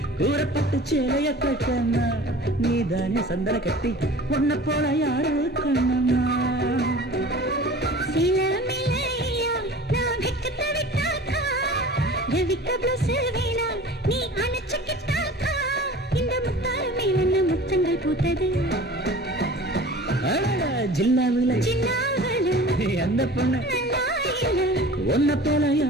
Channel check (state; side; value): normal; both; correlation 0.41